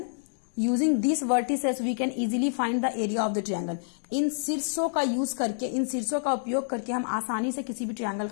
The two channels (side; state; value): right; silent; digital silence